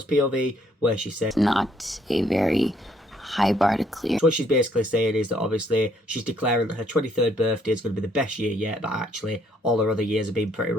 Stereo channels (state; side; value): normal; both; correlation 0.67